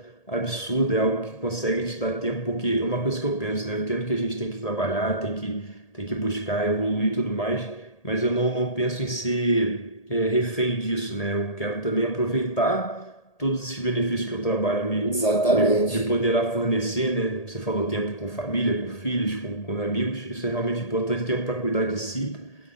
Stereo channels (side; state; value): right; late; 1.8 ms